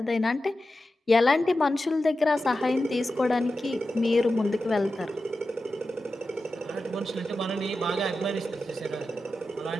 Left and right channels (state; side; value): normal; both; correlation 0.92